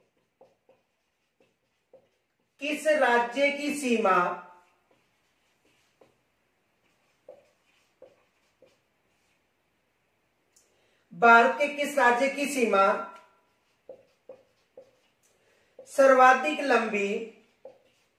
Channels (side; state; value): both; identical; correlation 1.00